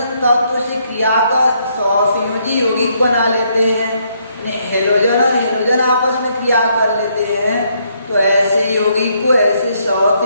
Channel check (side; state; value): both; inverted; correlation -0.72